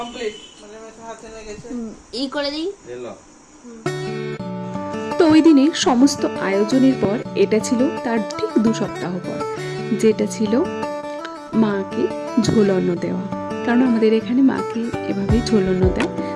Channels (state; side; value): identical; both; correlation 1.00